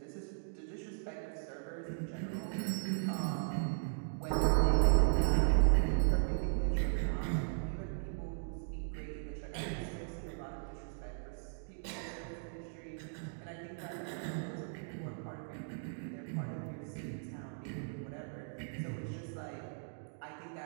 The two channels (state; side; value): silent; left; digital silence